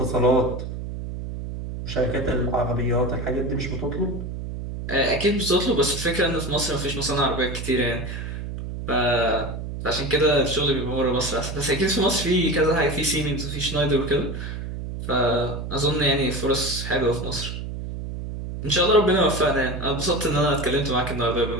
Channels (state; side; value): noise; right; hum, 7 dB below the sound